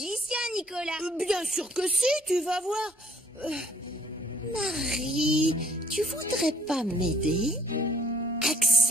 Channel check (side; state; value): both; normal; correlation 0.60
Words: Nicolas. Bien sûr que si, tu vas voir. Marie, tu voudrais pas m'aider?